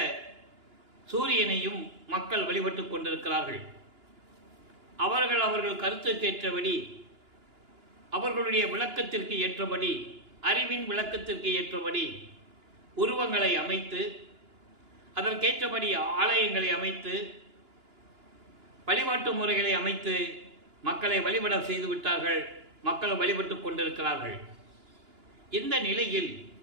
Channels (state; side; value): late; left; 2.9 ms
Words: சூரியனையும் மக்கள் வழிபட்டு கொண்டிருக்கிறார்கள். அவர்கள் கருத்துக்கு ஏற்றபடி, அவர்களுடைய விளக்கத்திற்கு ஏற்றபடி, அறிவின் விளக்கத்திற்கு ஏற்றபடி உருவங்களை அமைத்து, அதற்கேற்றபடி ஆலயங்களை அமைத்து, வழிபாட்டு முறைகளை அமைத்து மக்களை வழிபட செய்து விட்டார்கள். மக்கள் வழிபட்டு கொண்டிருக்கிறார்கள். இந்த நிலையில்